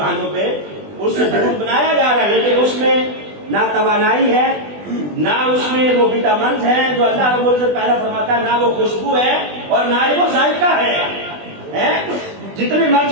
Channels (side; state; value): left; late; 20 ms